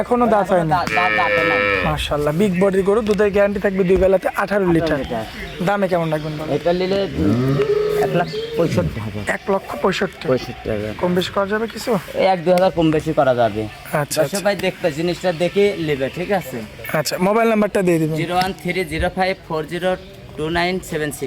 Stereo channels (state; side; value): identical; both; correlation 1.00